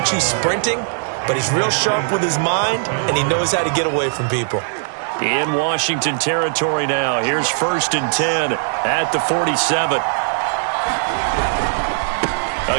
you sprinting, but he's real sharp with his mind, and he knows how to get away from people. In Washington territory now. Here's 1st and 10 at the 47.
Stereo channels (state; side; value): silent; left; digital silence